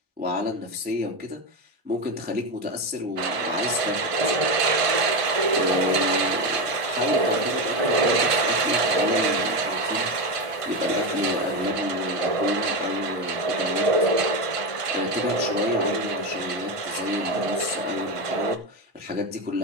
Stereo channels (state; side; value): late; left; 1.5 ms